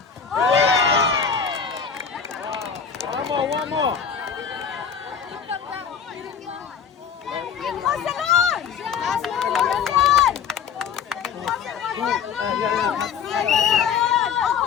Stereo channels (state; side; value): quieter; right; 6.9 dB